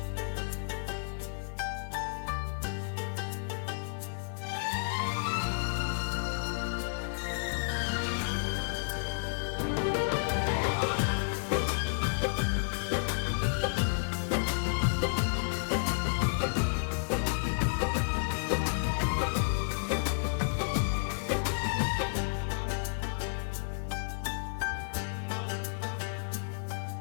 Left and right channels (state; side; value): silent; right; 57 dB below the other